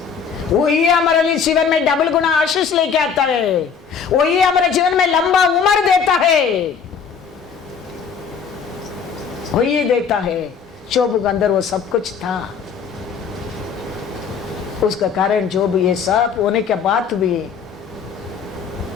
वही हमारे लिए जीवन में डबल गुना आशीष लेके आता है, वही हमारे जीवन में लंबा उम्र देता है, वही देता है। जोब के अंदर वो सब कुछ था, उसका कारण जोब ये सब होने के बाद भी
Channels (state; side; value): quieter; right; 6.4 dB